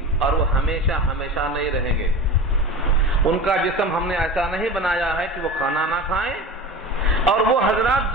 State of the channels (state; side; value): normal; both; correlation 0.32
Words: اور وہ ہمیشہ ہمیشہ نہیں رہیں گے۔ ان کا جسم ہم نے ایسا نہیں بنایا ہے کہ وہ کھانا نہ کھائیں، اور وہ حضرات